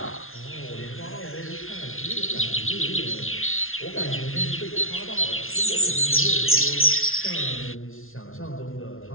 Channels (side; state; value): right; late; 0.61 ms